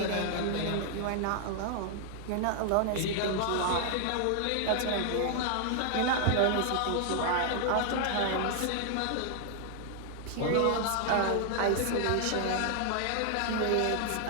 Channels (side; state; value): both; different; correlation 0.00